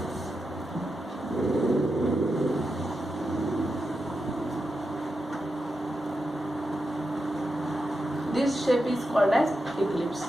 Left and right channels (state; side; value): normal; both; correlation 0.88